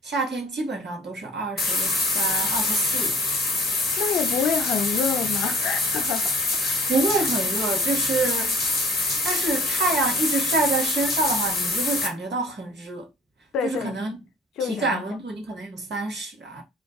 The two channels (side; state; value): both; normal; correlation 0.50